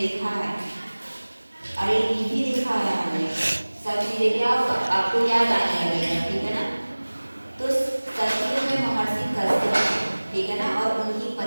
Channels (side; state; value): both; inverted; correlation -1.00